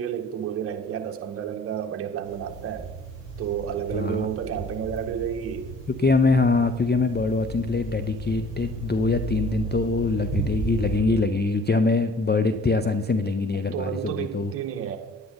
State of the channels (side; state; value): both; normal; correlation 0.51